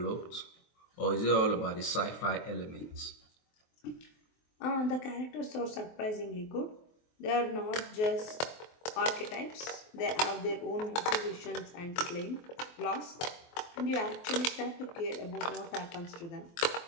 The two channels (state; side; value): late; right; 23 ms